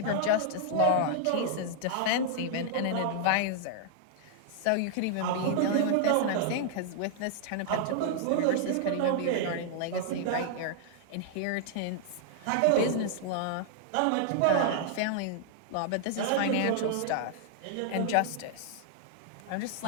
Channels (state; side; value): different; both; correlation -0.01